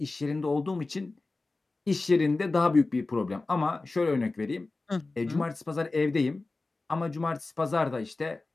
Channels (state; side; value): quieter; right; 3.4 dB